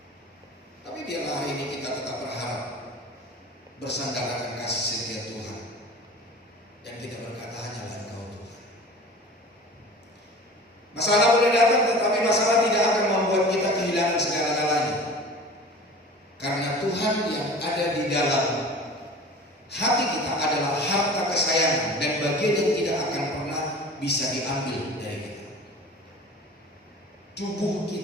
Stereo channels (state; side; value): normal; both; correlation 0.39